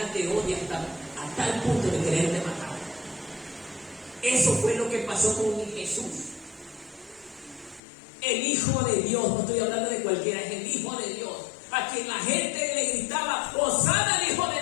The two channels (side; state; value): right; drops out; at 7.8 s